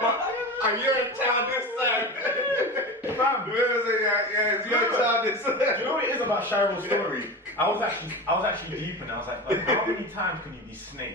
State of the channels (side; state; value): both; normal; correlation 0.27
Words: you're a child this time." Fam, yeah, it's your child this time. Do you know what it is about Shiro's story? I was actually deep in it. I was like, how many times can you be